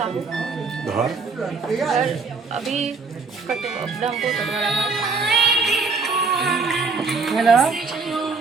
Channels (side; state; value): left; quieter; 4.5 dB